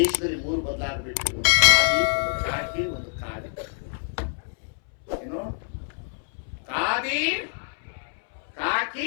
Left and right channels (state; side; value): silent; right; 61 dB below the other